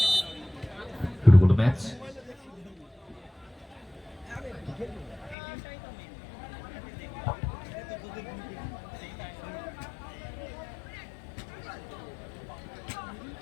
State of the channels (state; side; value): drops out; right; at 5.4 s